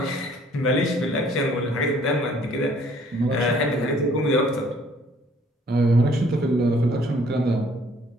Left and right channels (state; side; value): normal; both; correlation 0.59